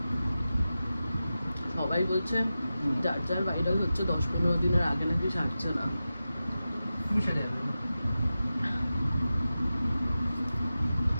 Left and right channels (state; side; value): inverted; both; correlation -0.93